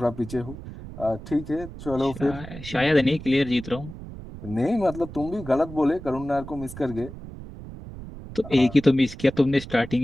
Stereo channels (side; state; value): right; noise; rumble, 13 dB below the sound